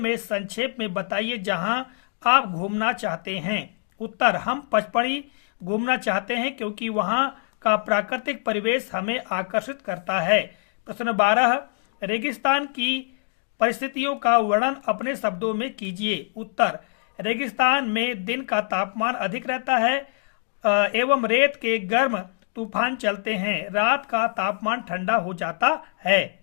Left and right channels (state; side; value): silent; right; digital silence